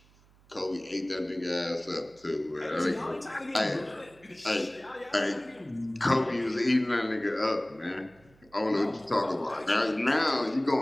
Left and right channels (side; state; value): right; noise; hum, 29 dB below the sound